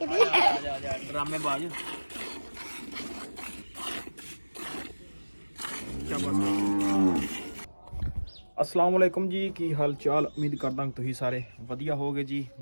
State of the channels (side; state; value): both; inverted; correlation -1.00